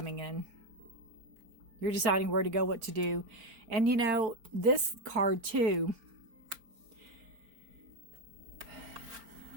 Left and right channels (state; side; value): late; left; 4.4 ms